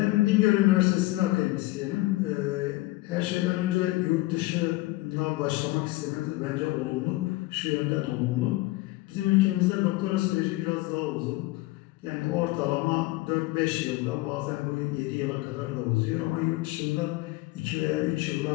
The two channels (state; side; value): quieter; right; 20.0 dB